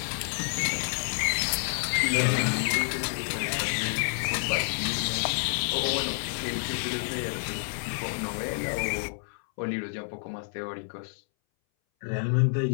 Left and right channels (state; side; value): silent; right; 59 dB below the other